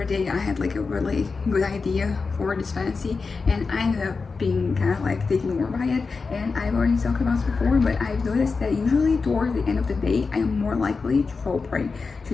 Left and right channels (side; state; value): right; quieter; 4.5 dB